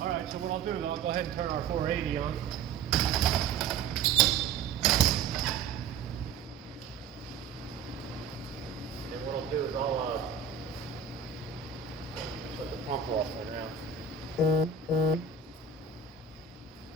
right. So what I'll do is I'll go ahead and turn our 480 on. And what I'll do is I'll shut the pump off right now.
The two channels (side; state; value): left; quieter; 5.9 dB